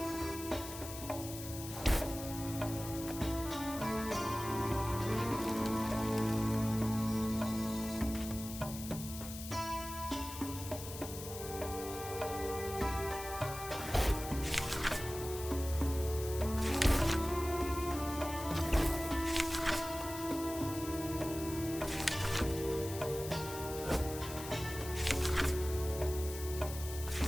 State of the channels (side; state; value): left; noise; hiss, 10 dB below the sound